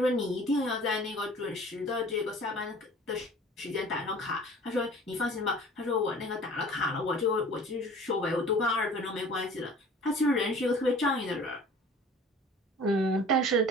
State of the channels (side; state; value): both; normal; correlation 0.46